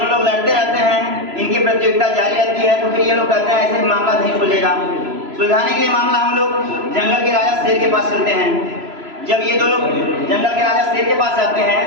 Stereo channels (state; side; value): late; left; 3.0 ms